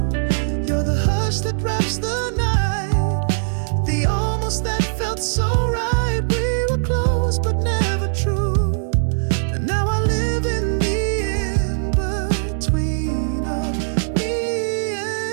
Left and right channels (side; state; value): left; silent; digital silence